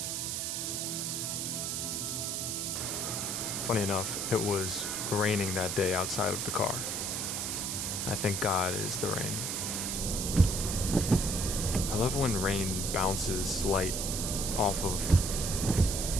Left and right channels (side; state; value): right; noise; hiss, 1 dB below the sound